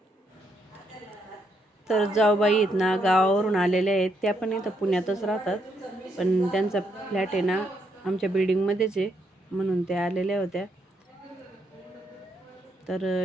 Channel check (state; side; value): normal; both; correlation 0.76